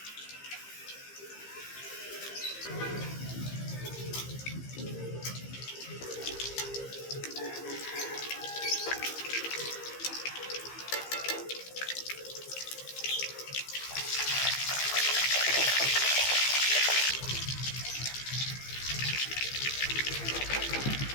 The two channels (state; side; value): late; right; 15 ms